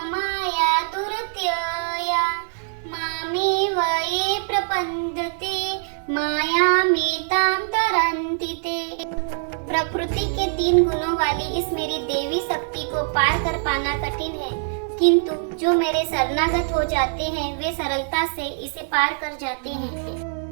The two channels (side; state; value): left; silent; digital silence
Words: माया दुरत्यया मामेव ये प्रपद्यते मायामेतां तरन्ति ते। प्रकृति के 3 गुणों वाली इस मेरी देवी शक्ति को पार कर पाना कठिन है, किंतु जो मेरे शरणागत हो जाते हैं वे सरलता से इसे पार कर जाते हैं।